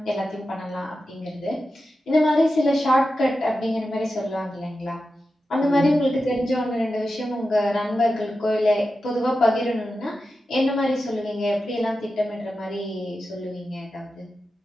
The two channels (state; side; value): normal; both; correlation 0.91